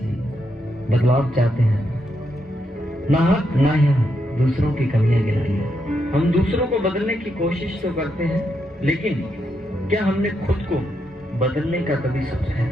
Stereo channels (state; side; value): normal; both; correlation 0.81